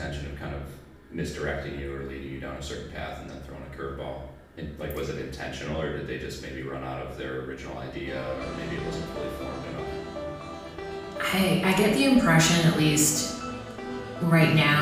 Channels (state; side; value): identical; both; correlation 1.00